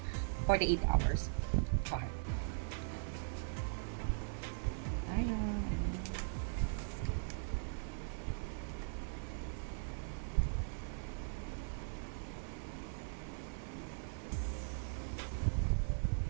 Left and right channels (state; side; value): silent; left; 51 dB below the other